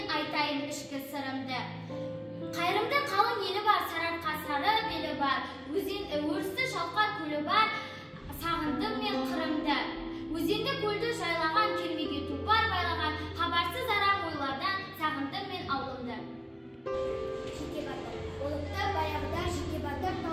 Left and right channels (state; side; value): identical; both; correlation 1.00